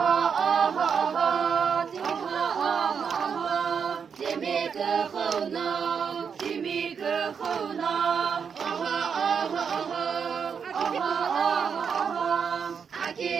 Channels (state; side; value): quieter; left; 6.6 dB